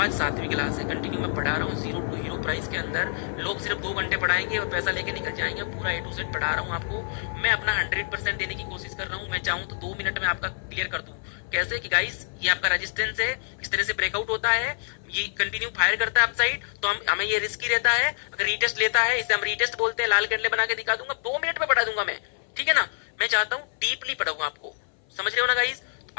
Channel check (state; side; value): silent; right; 56 dB below the other